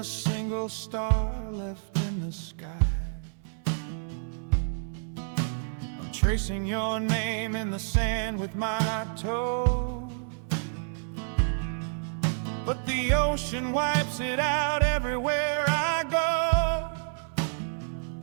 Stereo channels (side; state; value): left; silent; 59 dB below the other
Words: single star left in the sky. I'm tracing your name in the sand with my toe, but the ocean wipes it out everywhere I go.